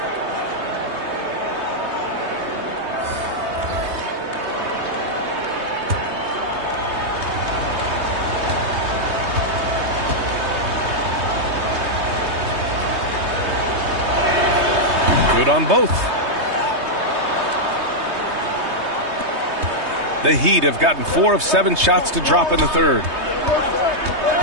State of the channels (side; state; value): left; late; 3.2 ms